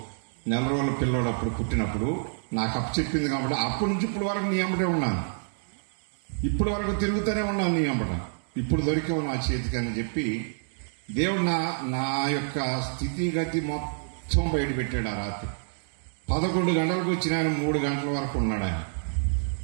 4 రోజుల పిల్లోడు అప్పుడు పుట్టినప్పుడు నాకు అప్పచెప్పింది కాబట్టి అప్పటి నుంచి ఇప్పుడు వరకు నీ అమ్మటే ఉన్నాను, ఇప్పటి వరకు తిరుగుతూనే ఉన్నాను నీ అమ్మట. ఇప్పుడు దొరికావు నా చేతికి అని చెప్పి దేవుడు నా యొక్క స్థితిగతి మొత్తం బయట పెట్టాడు. ఆ రాత్రి 11 గంటలకు వచ్చిన ఆయన 3 గంటల వరకు ఉన్నాడు. ఆయన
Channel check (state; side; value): silent; left; digital silence